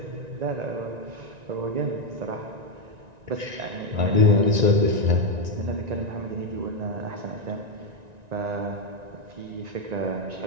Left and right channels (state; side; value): late; left; 1.9 ms